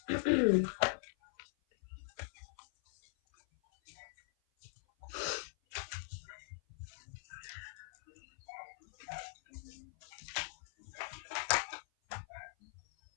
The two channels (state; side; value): silent; right; 50 dB below the other